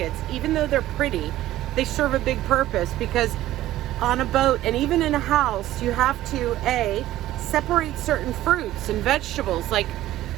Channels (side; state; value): left; quieter; 14.6 dB